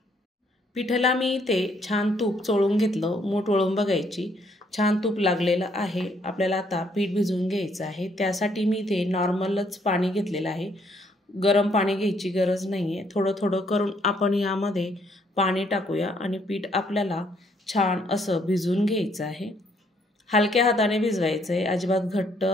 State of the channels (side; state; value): both; normal; correlation 0.69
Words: पिठाला मी इथे छान तूप चोळून घेतलं। मूठ वळून बघायची, छान तूप लागलेलं आहे। आपल्याला आता पीठ भिजवून घ्यायचं आहे। त्यासाठी मी इथे नॉर्मलच पाणी घेतलेलं आहे, गरम पाणी घ्यायची गरज नाहीये। थोडं थोडं करून आपण यामध्ये पाणी टाकूया आणि पीठ आपल्याला छान असं भिजवून घ्यायचं आहे। हलक्या हाताने भिजवायचं आहे, अजिबात घट्ट